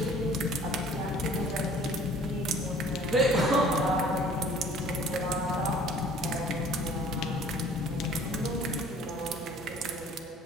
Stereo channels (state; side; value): normal; both; correlation 0.52